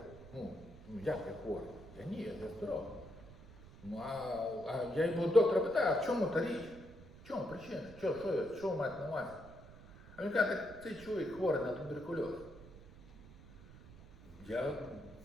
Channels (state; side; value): noise; right; rumble, 18 dB below the sound